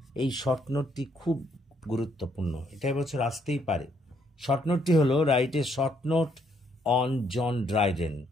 এই শর্ট নোটটি খুব গুরুত্বপূর্ণ। এটা এবছর আসতেই পারে। শর্ট নোটটি হলো write a short note on John Dryden.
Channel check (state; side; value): normal; both; correlation 0.71